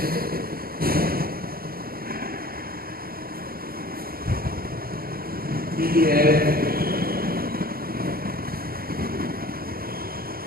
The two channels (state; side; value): late; left; 0.43 ms